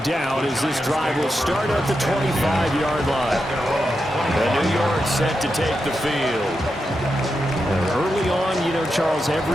down as this drive will start at the 25-yard line. And New York set to take the field. And early on, you know, Charles,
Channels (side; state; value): both; normal; correlation 0.87